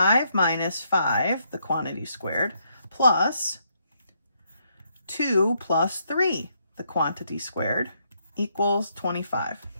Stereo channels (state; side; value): inverted; both; correlation -0.75